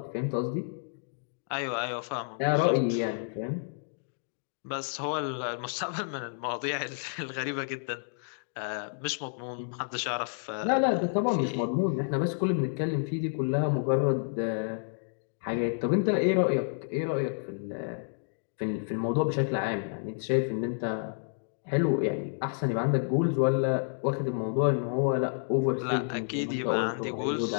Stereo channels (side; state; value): right; silent; digital silence